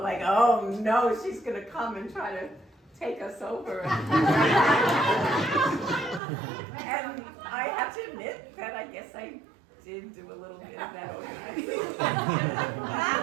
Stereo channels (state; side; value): drops out; left; at 6.2 s